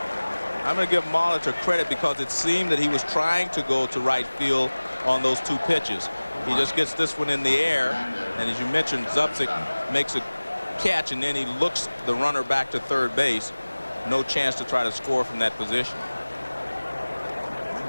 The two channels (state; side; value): inverted; both; correlation -1.00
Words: I'm going to give Molitor credit because it seemed that he was trying to go to right field on those 2 pitches. He just gets this one in the air, and as you mentioned, Zupzik makes a catch, and then he looks the runner back to third base. No chance to try to score from that position.